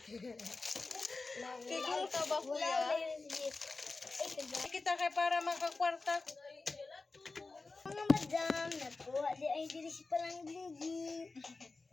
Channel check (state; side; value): quieter; right; 3.7 dB